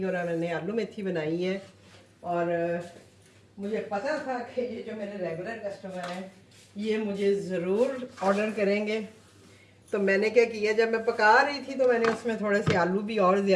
और मैंने आलू मेथी बनाई है। और मुझे पता था कि ये जो मेरे रेगुलर कस्टमर हैं ये मुझे ज़रूर ऑर्डर करेंगे। तो मैंने क्या किया, जब मैं पका रही थी तो मैंने उसमें थोड़े से आलू भी और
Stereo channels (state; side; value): identical; both; correlation 1.00